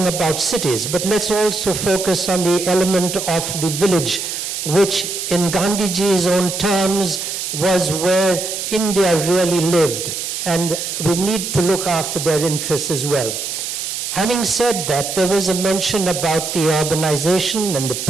about cities, but let's also focus on the element of the village, which in Gandhiji's own terms was where India really lived. And we need to look after their interests as well. Having said that, there was a mention about the urbanization and the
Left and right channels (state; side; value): noise; right; hiss, 4 dB below the sound